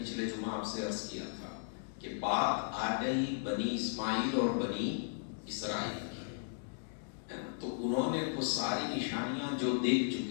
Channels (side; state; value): right; silent; digital silence